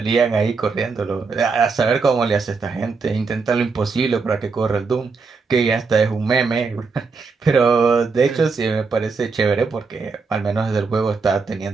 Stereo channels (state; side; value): quieter; left; 4.7 dB